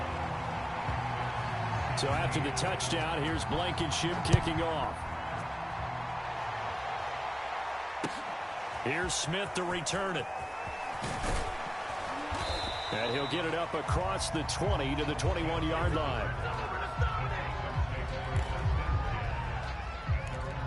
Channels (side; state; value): both; identical; correlation 1.00